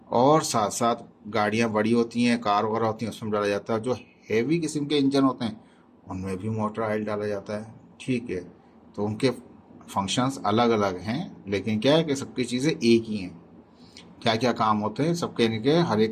और साथ साथ गाड़ियाँ बड़ी होती हैं, कार वगैरह होती हैं, उसमें डाला जाता है। जो हेवी किस्म के इंजन होते हैं उनमें भी मोटर ऑयल डाला जाता है। ठीक है, तो उनके फंक्शंस अलग अलग हैं, लेकिन क्या है कि सबकी चीज़ें एक ही हैं। क्या क्या काम होते हैं सबके, इनके हर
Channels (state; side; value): identical; both; correlation 1.00